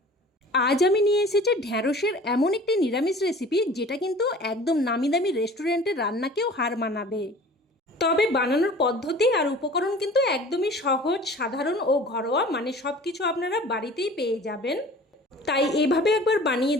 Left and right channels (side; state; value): both; normal; correlation 0.44